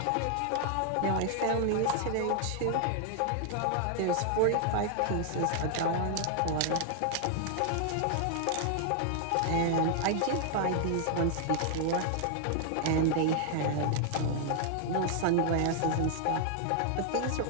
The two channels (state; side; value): different; both; correlation 0.00